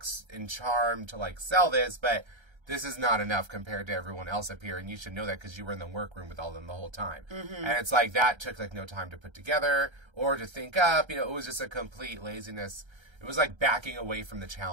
and charm to like sell this, but this is not enough compared to everyone else up here, and you should know that because you were in the workroom with all of them the whole time. Mm-hmm. And it's like that took like no time to put together or to think up. You know, it was just a complete laziness. It was like backing away from the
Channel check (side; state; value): left; late; 1.3 ms